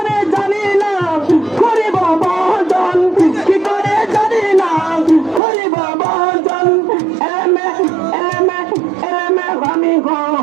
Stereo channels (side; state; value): left; drops out; at 5.4 s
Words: জানিলাম করিব বদন কি করে জানিলাম করিব বদন এমে এমে এমে আমি